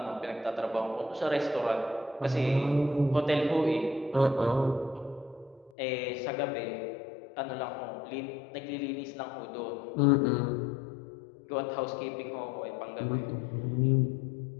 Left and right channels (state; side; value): drops out; right; at 5.7 s